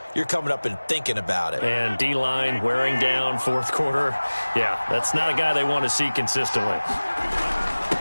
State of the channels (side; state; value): both; inverted; correlation -1.00